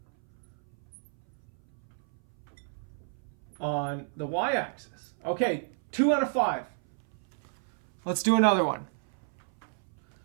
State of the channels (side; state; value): left; silent; 57 dB below the other